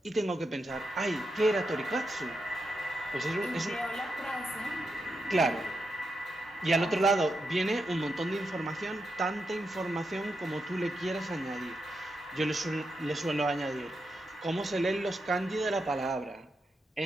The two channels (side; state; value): both; normal; correlation 0.85